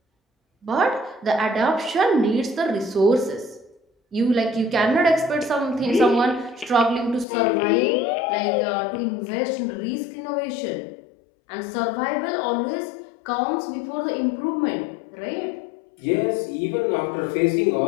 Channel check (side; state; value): right; drops out; at 7.2 s